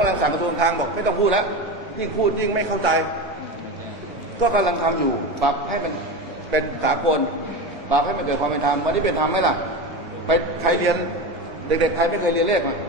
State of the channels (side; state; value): both; normal; correlation 0.23